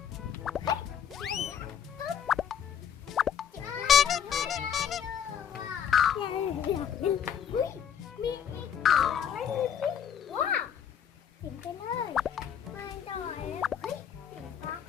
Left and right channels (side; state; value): right; quieter; 8.6 dB